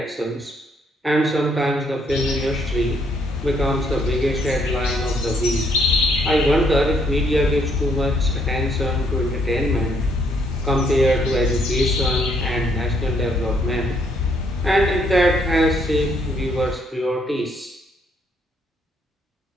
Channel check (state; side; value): normal; both; correlation 0.70